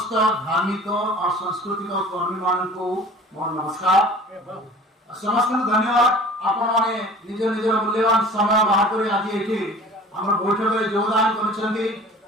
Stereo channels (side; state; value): both; normal; correlation 0.44